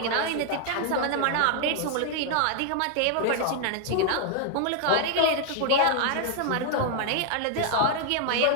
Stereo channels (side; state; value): both; different; correlation 0.00